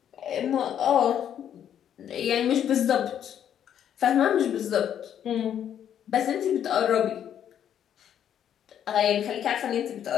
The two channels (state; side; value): quieter; right; 9.7 dB